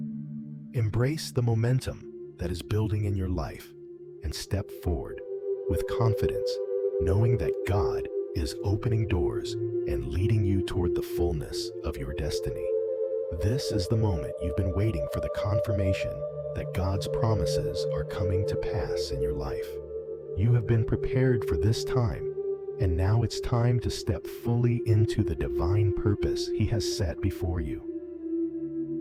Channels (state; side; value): identical; both; correlation 1.00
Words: Embrace the momentum that is building in your life and step forward with confidence, knowing that God is opening doors and leading you toward the fullness of your destiny. This is the moment you've been waiting for, the confirmation that God's promises are coming to pass in your life. You have been prepared for this time, and now it's time to step fully into the divine purpose He has set before